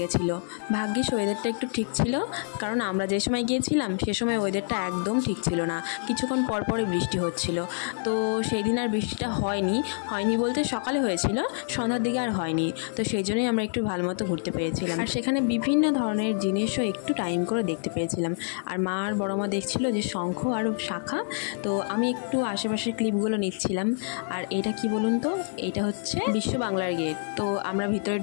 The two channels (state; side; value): silent; right; 58 dB below the other